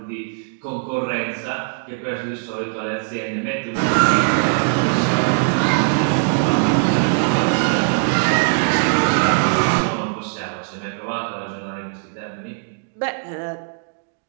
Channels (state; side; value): silent; left; 60 dB below the other